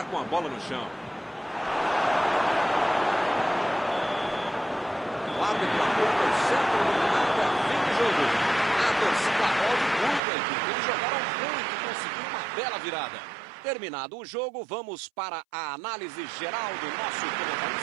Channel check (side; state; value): left; drops out; at 10.2 s